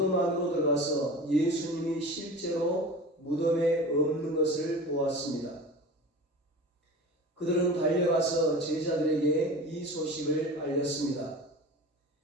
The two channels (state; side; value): normal; both; correlation 0.35